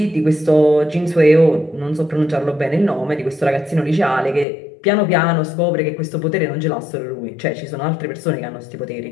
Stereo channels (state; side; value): drops out; right; at 4.5 s